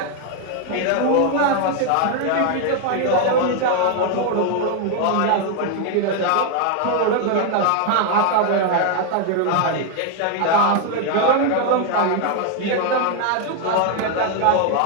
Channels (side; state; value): both; different; correlation 0.01